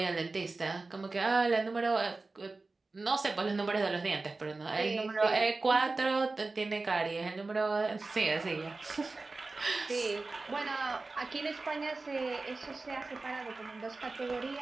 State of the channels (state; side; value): quieter; left; 3.5 dB